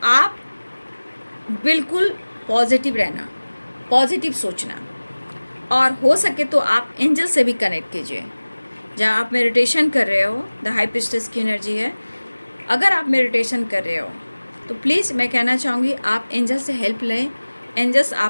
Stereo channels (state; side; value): inverted; both; correlation -1.00